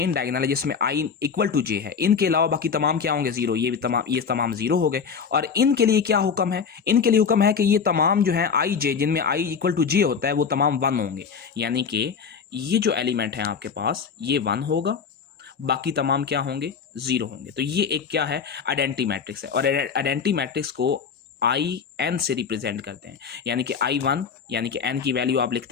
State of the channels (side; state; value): right; quieter; 6.2 dB